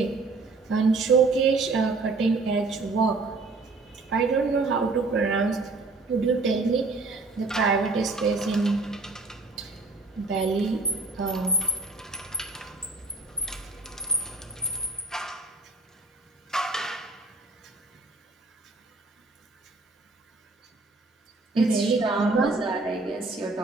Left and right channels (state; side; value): quieter; left; 3.5 dB